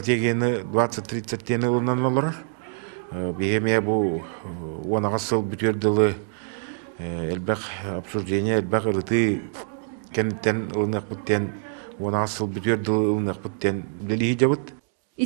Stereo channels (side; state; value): left; silent; digital silence